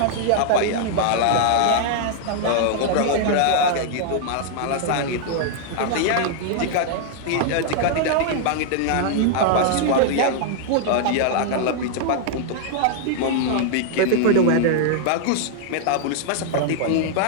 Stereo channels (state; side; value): different; both; correlation -0.01